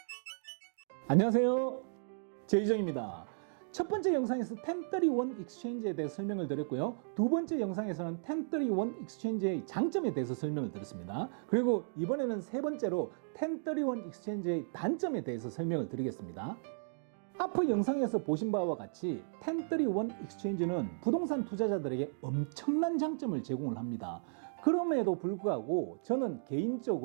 안녕하세요, 제이정입니다. 첫 번째 영상에서 1031 익스체인지에 대해 설명을 드렸고요. 두 번째 영상에서는 1031 익스체인지의 장점에 대해서 설명을 드렸습니다. 그리고 이번에는 세 번째로 1031 익스체인지의 단점에 대해서 설명을 드리겠습니다. 앞의 영상에서 보신 바와 같이 1031 익스체인지는 부동산 투자자들에게 엄청난 장점을 제공을 합니다. 그럼에도 불구하고 저는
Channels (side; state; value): left; silent; digital silence